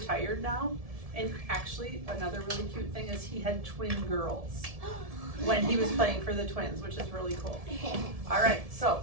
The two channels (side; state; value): left; late; 1.7 ms